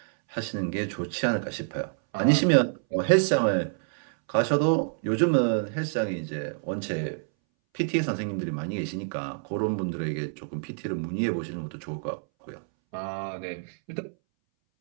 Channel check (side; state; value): left; silent; 60 dB below the other